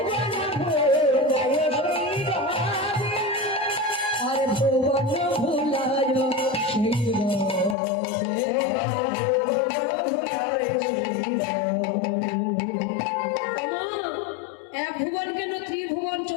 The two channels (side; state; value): right; drops out; at 7.8 s